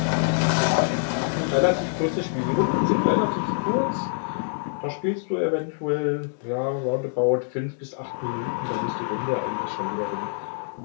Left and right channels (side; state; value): right; silent; 62 dB below the other